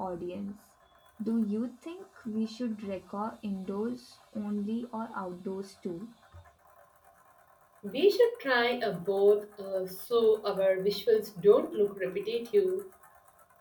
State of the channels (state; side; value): identical; both; correlation 1.00